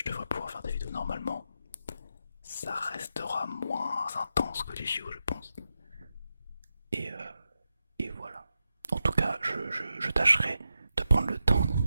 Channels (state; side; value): inverted; both; correlation -0.87